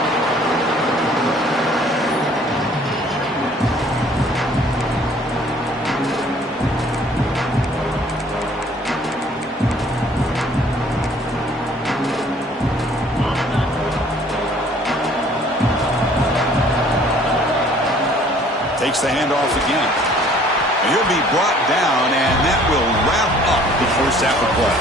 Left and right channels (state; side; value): normal; both; correlation 0.56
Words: takes the handoff again. And he'll be brought down, and that will wrap up the first half of play.